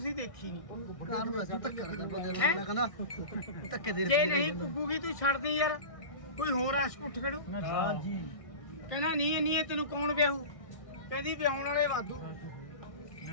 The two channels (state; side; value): late; right; 1.6 ms